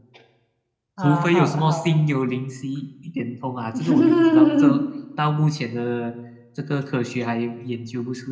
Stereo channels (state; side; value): identical; both; correlation 1.00